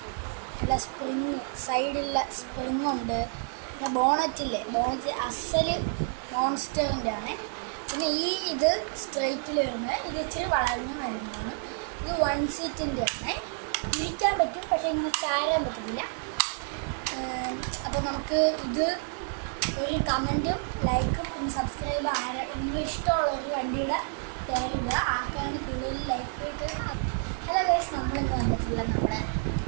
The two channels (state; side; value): silent; left; 58 dB below the other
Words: നല്ല സ്പ്രിങ്, സൈഡിലുള്ള സ്പ്രിങ് ഉണ്ട്. പിന്നെ ബോണറ്റ് അസല് മോൺസ്റ്ററിൻ്റെ ആണ്. പിന്നെ ഇത് സ്ട്രെയിറ്റിൽ വരുന്നത്, ഇത് ഇച്ചിരി വളഞ്ഞു വരുന്നതാണ്. ഇത് 1 സീറ്റിൻ്റെ ആണ്. ഇരിക്കാൻ പറ്റും, പക്ഷേ ഇങ്ങനെ ചാരാൻ പറ്റില്ല. അപ്പോൾ നമുക്ക് ഇത് ഒരു കമൻറ്റും ലൈക്കും പിന്നെ സബ്സ്ക്രൈബ് നിങ്ങൾ ഇഷ്ടമുള്ള ഒരു വണ്ടിയുടെ പേരിടുക. ആർക്കാണ് കൂടുതൽ ലൈക്ക് ഇട്ട്. ഹലോ ഗൈസ്, നമ്മളിന്ന് വന്നിട്ടുള്ള നമ്മുടെ